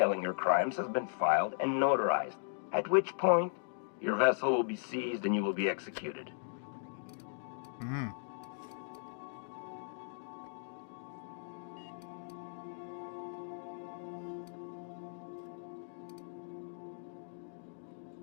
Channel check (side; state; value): right; silent; digital silence